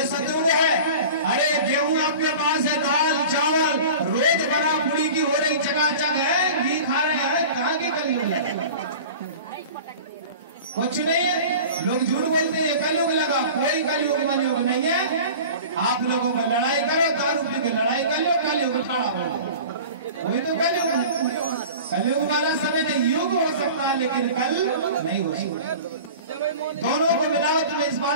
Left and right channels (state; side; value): inverted; both; correlation -0.39